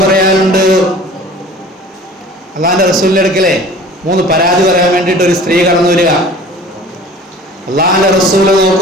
പറയാനുണ്ട്. അള്ളാന്റെ റസൂലിന്റെ അടുക്കലെ 3 പരാതി പറയാൻ വേണ്ടിയിട്ട് ഒരു സ്ത്രീ കടന്നു വരിക. അള്ളാന്റെ റസൂല്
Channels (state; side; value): normal; both; correlation 0.45